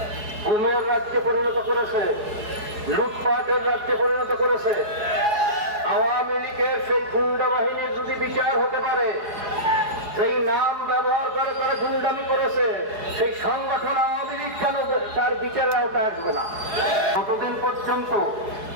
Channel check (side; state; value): left; late; 4.8 ms